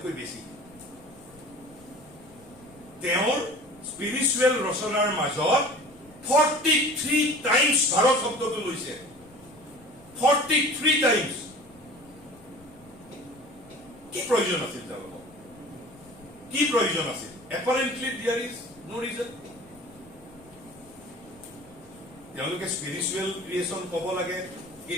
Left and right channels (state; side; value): noise; left; rumble, 26 dB below the sound